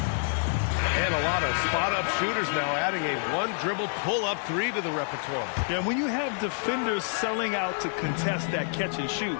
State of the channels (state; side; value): silent; right; 60 dB below the other